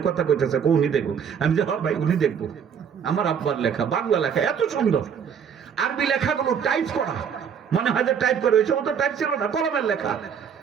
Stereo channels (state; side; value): quieter; left; 7.4 dB